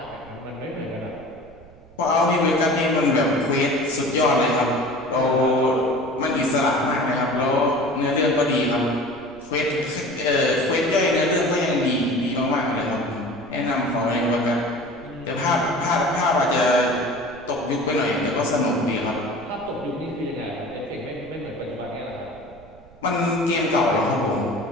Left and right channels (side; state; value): right; noise; rumble, 24 dB below the sound